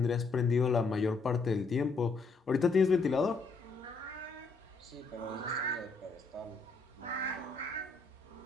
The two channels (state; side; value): quieter; right; 4.0 dB